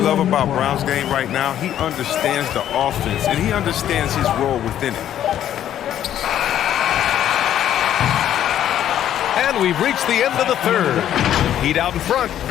about Brown's game right now, he understands the offense, and he understands his role within it. And we've reached the end of the third. Heat out in front.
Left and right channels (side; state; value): right; quieter; 11.0 dB